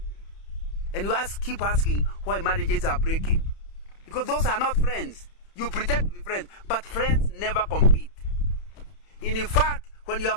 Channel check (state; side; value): late; right; 31 ms